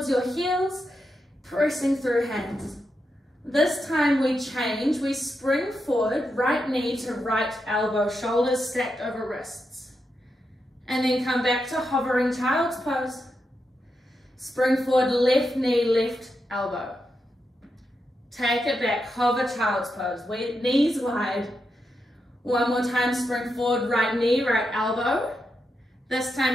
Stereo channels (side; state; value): both; normal; correlation 0.85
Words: your heels, pressing through hands. This time we change, we spring forward, right knee to right elbow, shoulders stacked over wrists. And then come back to hovering child's pose. Spring forward, left knee, left elbow. Take it back, hover child's pose, knees wide. One more time, spring forward, right knee, right elbow. This